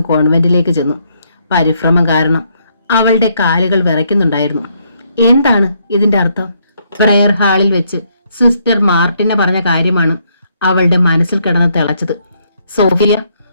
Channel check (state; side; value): inverted; both; correlation -0.73